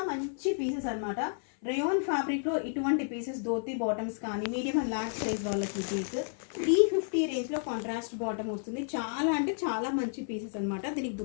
మంచి పీసెస్ అనమాట. రేయాన్ ఫ్యాబ్రిక్లో ఇటువంటి పీసెస్ ధోతి బాటమ్స్ కానీ మీడియం అండ్ లార్జ్ సైజ్ వాళ్ళకి పీస్ 350 రేంజ్లో కాంట్రాస్ట్ బాటమ్ వస్తుంది. చాలా అంటే చాలా మంచి పీసెస్ అనమాట. దీనికి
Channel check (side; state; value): right; silent; 57 dB below the other